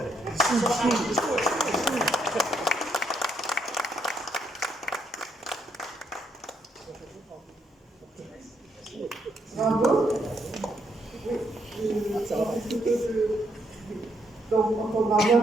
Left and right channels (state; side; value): normal; both; correlation 0.75